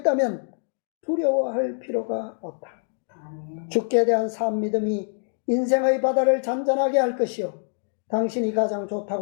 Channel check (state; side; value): silent; right; digital silence